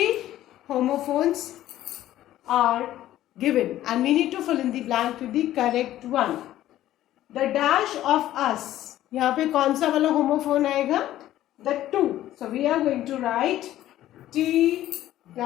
homophones are given and we need to fill in the blank with the correct one. The dash of us, यहाँ पे कौन सा वाला homophone आएगा? The 2. So we are going to write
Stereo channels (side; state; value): right; quieter; 13.6 dB